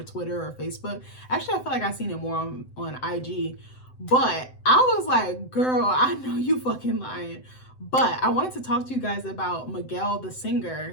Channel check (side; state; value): right; late; 7.8 ms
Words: Twitter or Facebook. Actually, I feel like I've seen it more on IG. But I was like, girl, I know you fucking lying. But I wanted to talk to you guys about Miguel, the singer,